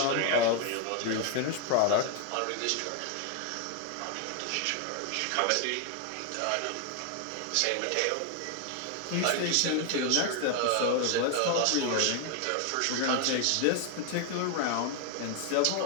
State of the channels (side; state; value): both; different; correlation 0.01